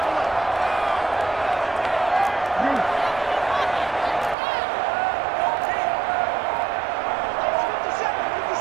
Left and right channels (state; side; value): drops out; left; at 4.4 s